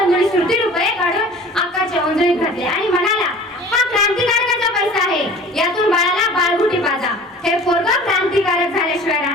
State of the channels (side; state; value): both; normal; correlation 0.44